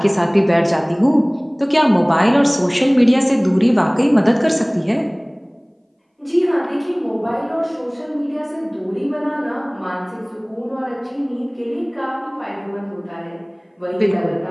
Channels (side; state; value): both; identical; correlation 1.00